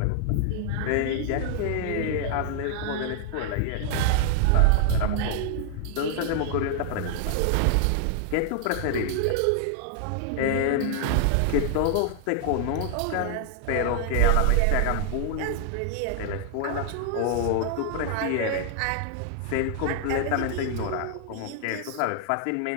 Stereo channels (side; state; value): both; different; correlation -0.01